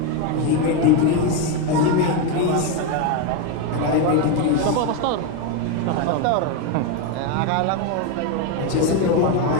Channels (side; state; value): both; different; correlation 0.03